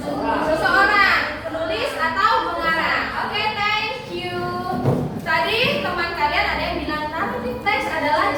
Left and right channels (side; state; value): both; identical; correlation 1.00